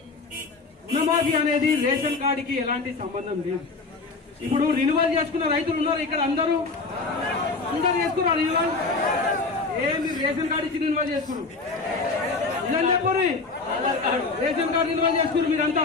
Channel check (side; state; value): right; quieter; 4.0 dB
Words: రుణమాఫీ అనేది రేషన్ కార్డుకి ఎలాంటి సంబంధం లేదు. ఇప్పుడు రిన్యువల్ చేసుకున్న రైతులు ఉన్నారు ఇక్కడ, అందరూ చేసుకున్నారు రిన్యువల్. ఏమి రేషన్ కార్డు ఇచ్చి రిన్యువల్ చేసుకున్నారు? ఇదని చెప్పండి, రేషన్ కార్డు రిన్యువల్ చేసుకున్నారు మీరంతా